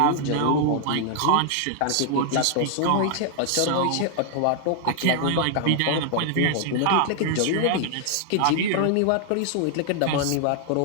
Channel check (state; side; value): different; both; correlation 0.00